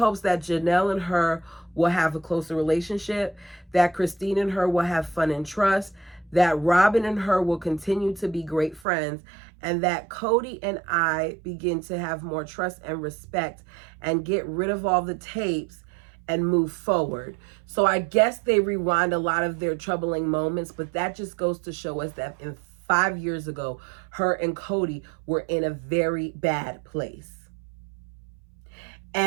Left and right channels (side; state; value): left; drops out; at 8.8 s